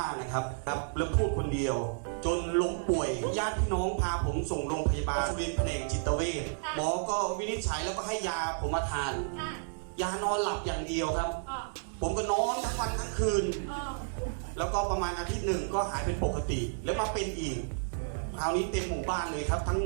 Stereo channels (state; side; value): silent; left; digital silence